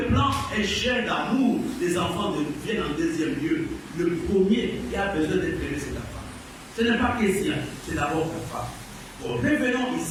plan échelle d'amour, les enfants viennent en deuxième lieu. Le premier qui a besoin d'être aimé, c'est la femme. Ce n'est pas question, c'est d'abord la femme. Bon, revenons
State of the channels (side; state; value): both; identical; correlation 1.00